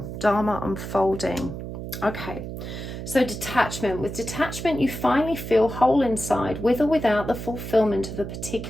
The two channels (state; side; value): noise; right; hum, 8 dB below the sound